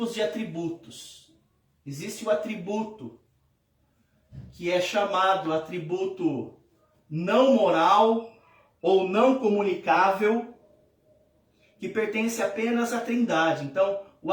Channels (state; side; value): identical; both; correlation 1.00